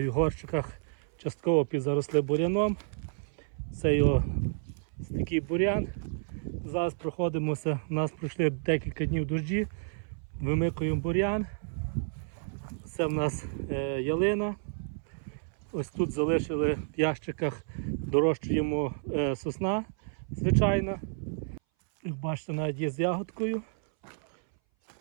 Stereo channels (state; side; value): silent; left; 57 dB below the other